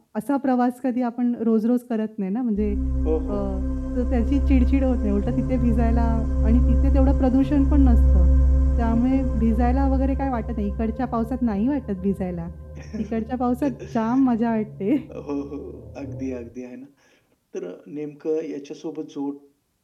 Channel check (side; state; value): both; identical; correlation 1.00